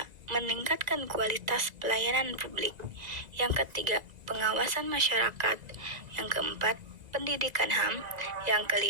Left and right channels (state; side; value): late; left; 1.9 ms